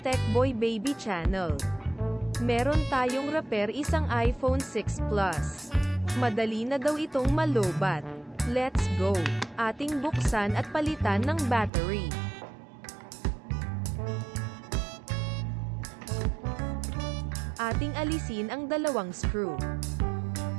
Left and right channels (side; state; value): left; drops out; at 11.7 s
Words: TECHBOY BABY channel. Meron tayong repair isang iPhone 6 Plus. Madali na daw itong malobat. Let's go! Ating buksan at palitan ng battery. Ating alisin ang dalawang screw.